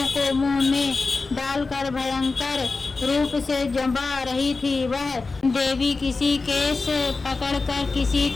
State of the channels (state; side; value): quieter; right; 3.9 dB